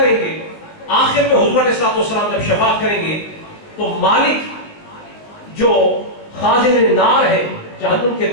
گے۔ آخر میں حضور علیہ السلام جب شفاعت کریں گے تو مالک جو خازن نار ہے، جہنم کے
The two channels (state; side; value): late; right; 19 ms